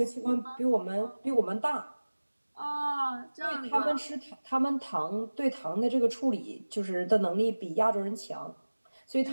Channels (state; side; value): inverted; both; correlation -1.00